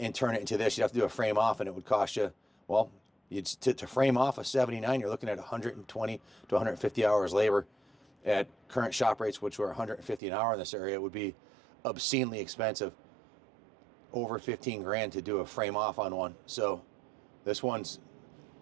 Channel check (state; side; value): drops out; left; at 10.2 s